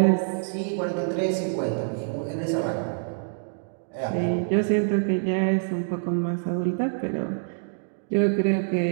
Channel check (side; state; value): left; silent; digital silence